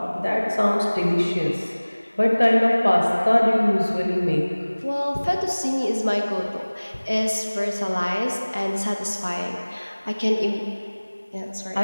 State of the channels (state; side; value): inverted; both; correlation -1.00